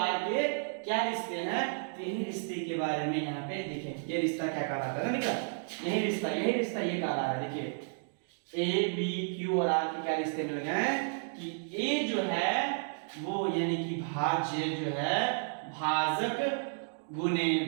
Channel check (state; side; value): silent; left; digital silence